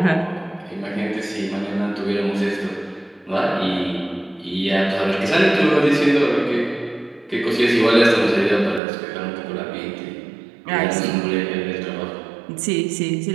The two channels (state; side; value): drops out; left; at 8.8 s